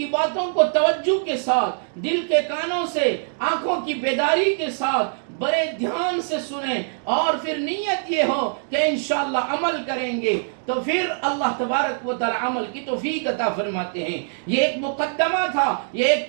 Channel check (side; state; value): left; silent; digital silence